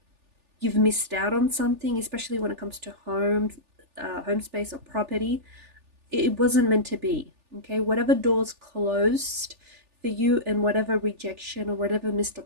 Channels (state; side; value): late; left; 3.4 ms